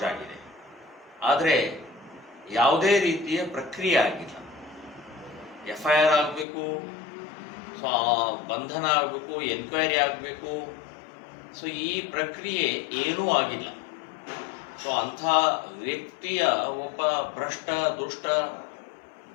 ಆಗಿದೆ. ಆದರೆ ಯಾವುದೇ ರೀತಿಯ ಪ್ರಕ್ರಿಯೆ ಆಗಿಲ್ಲ. FIR ಆಗಬೇಕು, ಸೊ ಬಂಧನ ಆಗಬೇಕು, ಎನ್ಕ್ವೈರಿ ಆಗಬೇಕು. ಸೊ ಈ ಪ್ರಕ್ರಿಯೆ ಏನೂ ಆಗಿಲ್ಲ. ಸೊ ಅಂಥ ವ್ಯಕ್ತಿಯ ಒಬ್ಬ ಭ್ರಷ್ಟ ದುಷ್ಟ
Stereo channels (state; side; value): drops out; right; at 6.5 s